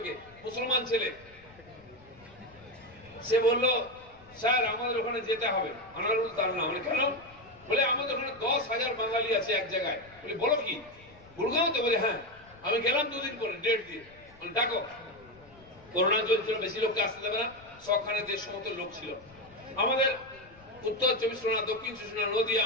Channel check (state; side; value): noise; left; rumble, 25 dB below the sound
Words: মুসলমান ছেলে। সে বলল, স্যার আমাদের ওখানে যেতে হবে। আনারুল তার নাম। কেন? বলে আমাদের ওখানে 10,000 বাঙালি আছে এক জায়গায়। বলে বলো কি, গুড়গাঁওতে? বলে হ্যাঁ। আমি গেলাম 2 দিন পরে, ডেট দিয়ে। ডাকো। করোনা চলছিল, বেশি লোককে আসতে দেবে না, 100খানে 150 মতো লোক ছিল। আমাদের উত্তর 24 পরগনা, দক্ষিণ 24 পরগনা, নদিয়া,